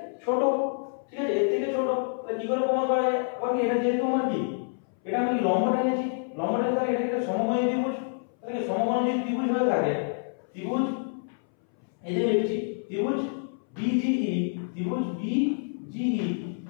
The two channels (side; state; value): right; silent; 60 dB below the other